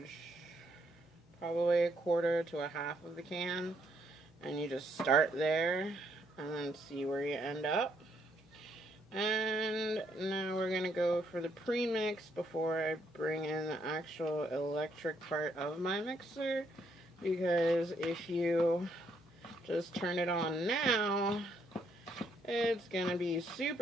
probably 1/4 to 1/2 of the can, and you just start there and then see where you end up. And now we're gonna go for the premix before I bring in the actual electric part of my mixer, because if you just turn it on now, it's gonna be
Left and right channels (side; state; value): both; normal; correlation 0.72